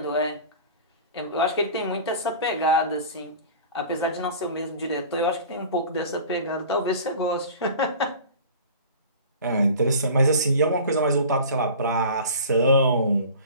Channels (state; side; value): inverted; both; correlation -0.40